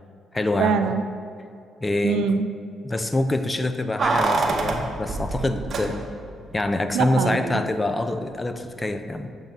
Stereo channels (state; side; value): normal; both; correlation 0.80